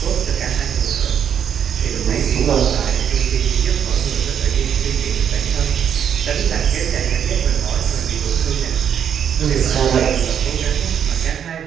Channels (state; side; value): quieter; left; 8.5 dB